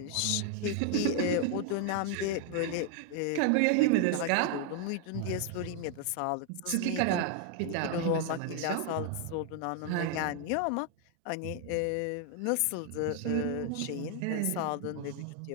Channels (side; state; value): both; different; correlation 0.00